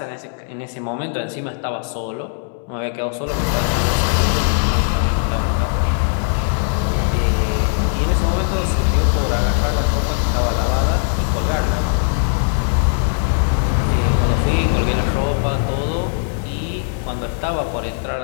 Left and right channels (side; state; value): right; silent; 66 dB below the other